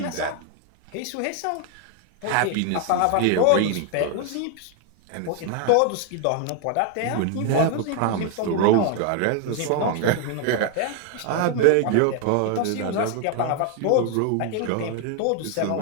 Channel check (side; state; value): both; different; correlation 0.00